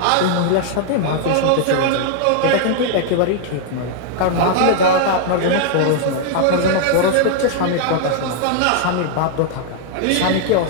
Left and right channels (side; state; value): both; different; correlation 0.00